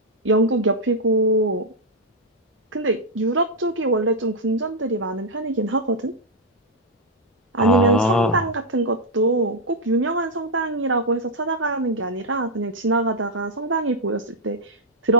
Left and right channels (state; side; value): normal; both; correlation -0.02